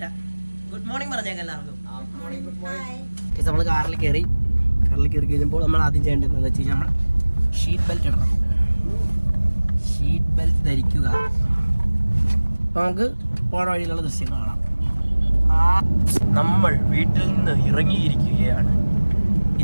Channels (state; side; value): inverted; both; correlation -1.00